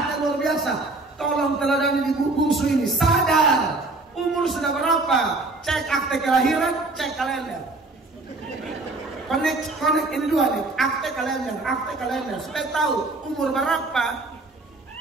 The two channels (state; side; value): quieter; left; 3.2 dB